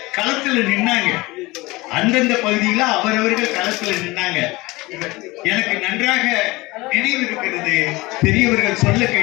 களத்துல நின்னாங்க. அந்தந்த பகுதியில அவரவர்கள் களத்துல நின்னாங்க. எனக்கு நன்றாக நினைவு இருக்கிறது. பெரியவர்கள் சொல்ல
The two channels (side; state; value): right; quieter; 21.8 dB